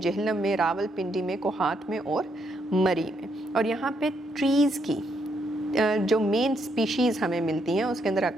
में, रावलपिंडी में, कोहाट में और मरी में। और यहाँ पे ट्रीज़ की जो मेन स्पीशीज़ हमें मिलती हैं उसके अंदर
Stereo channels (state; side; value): normal; both; correlation 0.76